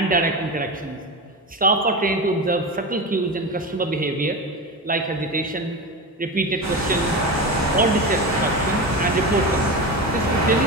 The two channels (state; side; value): normal; both; correlation 0.22